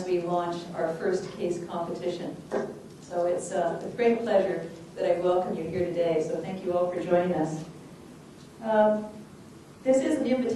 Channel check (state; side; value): identical; both; correlation 1.00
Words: we launch our first case competition. So it's with great pleasure that I welcome you here today, so thank you all for joining us. This is an